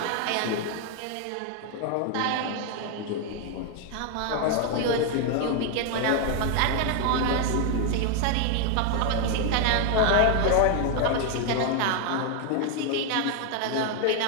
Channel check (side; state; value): both; different; correlation 0.00